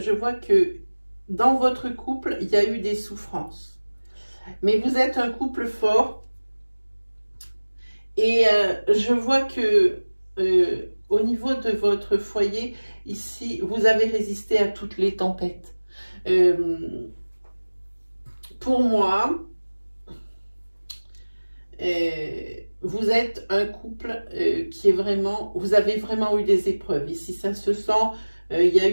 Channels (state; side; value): inverted; both; correlation -1.00